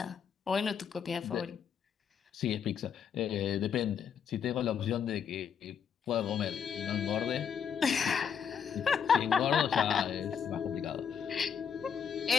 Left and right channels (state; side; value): quieter; right; 7.4 dB